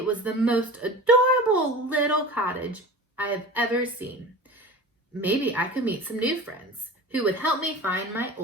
was the most adorable little cottage I have ever seen. Maybe I could meet some new friends who would help me find my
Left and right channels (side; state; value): both; normal; correlation 0.35